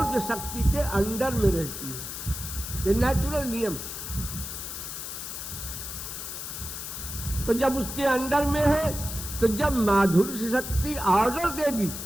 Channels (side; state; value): left; noise; hiss, 7 dB below the sound